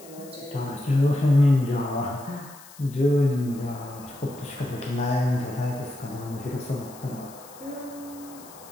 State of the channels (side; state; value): left; noise; hiss, 20 dB below the sound